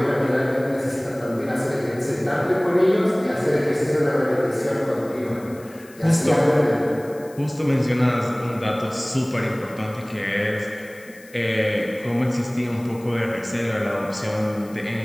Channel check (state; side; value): noise; left; hiss, 24 dB below the sound